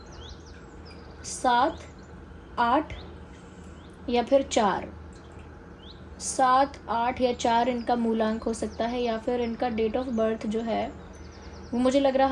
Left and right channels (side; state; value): both; identical; correlation 1.00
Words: 7, 8 या फिर 4। 7, 8 या 4 इनका मूलांक हो सकता है, या फिर इनका डेट ऑफ बर्थ जो है वो मुझे लग